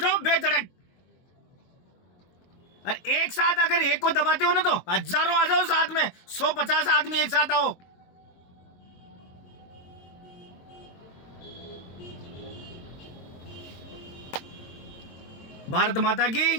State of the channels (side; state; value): right; late; 22 ms